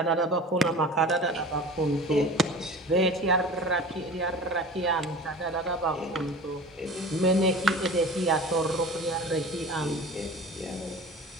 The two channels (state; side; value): normal; both; correlation 0.38